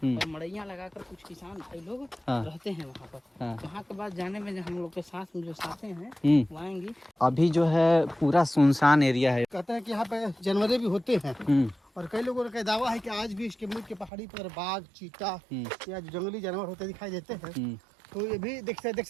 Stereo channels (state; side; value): drops out; left; at 14.1 s